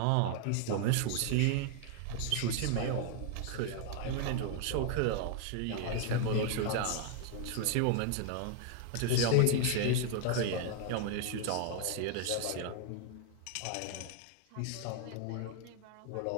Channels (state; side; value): different; both; correlation 0.00